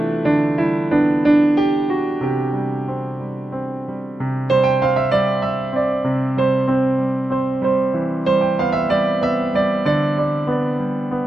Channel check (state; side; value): normal; both; correlation 0.89